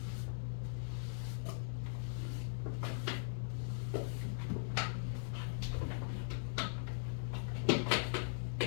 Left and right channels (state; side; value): silent; right; digital silence